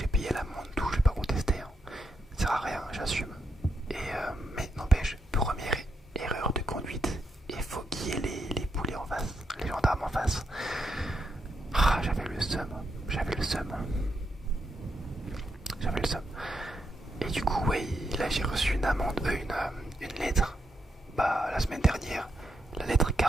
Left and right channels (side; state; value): both; normal; correlation 0.81